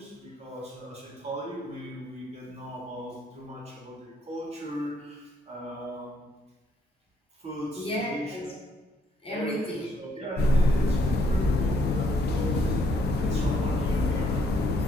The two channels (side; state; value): both; normal; correlation 0.70